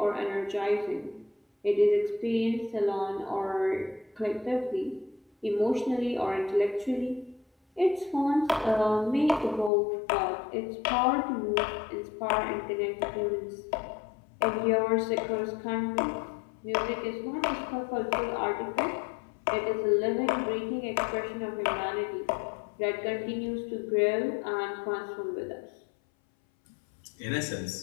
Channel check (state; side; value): drops out; right; at 9.7 s